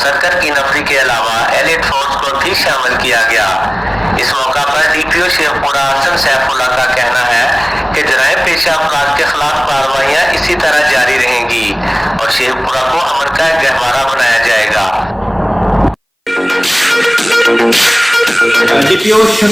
سرکر کی نفری کے علاوہ ایلیٹ فورس کو بھی شامل کیا گیا۔ اس موقع پر DPO شیخو پورہ حسن سیف اللہ کا کہنا ہے کہ جرائم پیشہ افراد کے خلاف کارروائیاں اسی طرح جاری رہیں گی اور شیخو پورہ کو امن کا ایک گہوارہ بنایا جائے گا۔ DPO شیخو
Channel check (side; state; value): both; identical; correlation 1.00